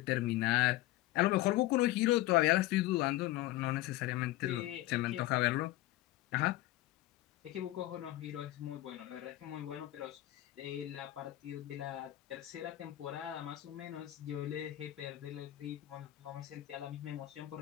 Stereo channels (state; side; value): quieter; right; 16.4 dB